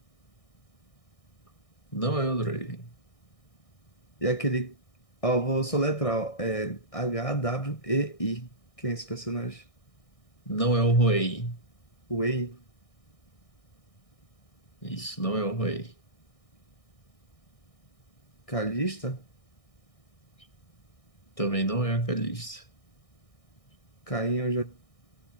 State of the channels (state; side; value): late; right; 1.6 ms